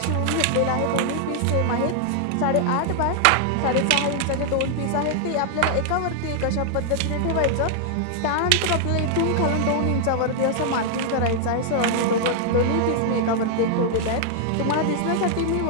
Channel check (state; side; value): different; both; correlation 0.00